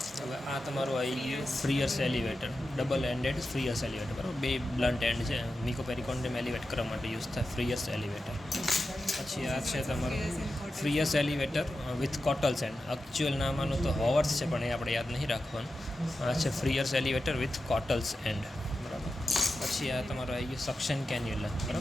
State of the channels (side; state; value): both; normal; correlation 0.91